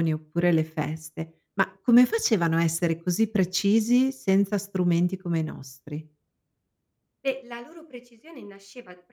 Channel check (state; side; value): identical; both; correlation 1.00